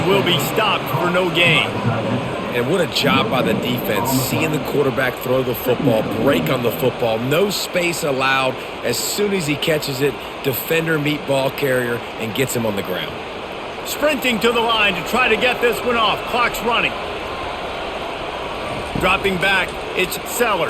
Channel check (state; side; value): identical; both; correlation 1.00